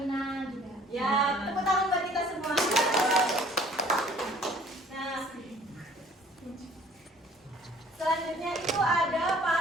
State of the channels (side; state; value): both; normal; correlation 0.54